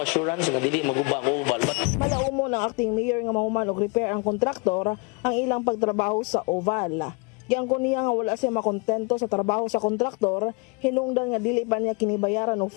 assurance nga dili maguba ang oval. Malaumo ng acting mayor nga mahuman og repair ang kontraktor ang ilang pagtrabaho sa oval. Giangkon niya nga wala siya makontento sa trabaho sa kontraktor, hinungdan nga dili pa niya kinibayaran og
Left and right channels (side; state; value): right; quieter; 31.4 dB